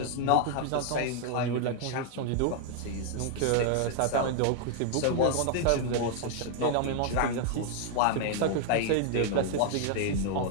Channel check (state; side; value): different; both; correlation 0.00